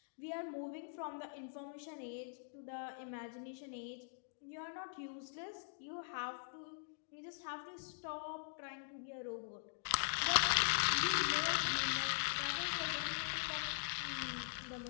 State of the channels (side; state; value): right; silent; digital silence